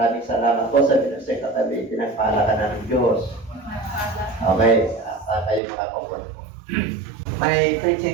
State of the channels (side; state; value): left; drops out; at 5.6 s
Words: salamat po sa binusay katabi. Pinagpahalakan ng Diyos. Okay, kayo makakoport po. My